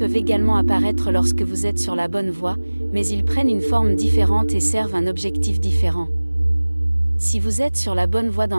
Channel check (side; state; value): both; inverted; correlation -1.00